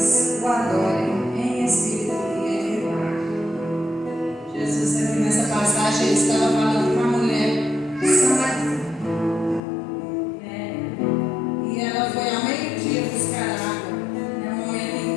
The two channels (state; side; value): drops out; right; at 9.6 s